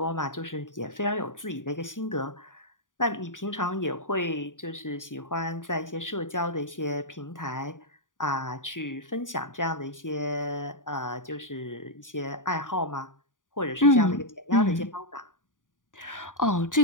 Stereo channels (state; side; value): late; right; 0.88 ms